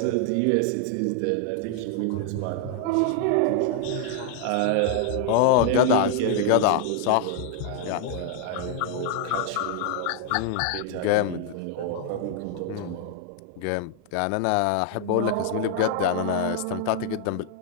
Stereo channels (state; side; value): different; both; correlation 0.00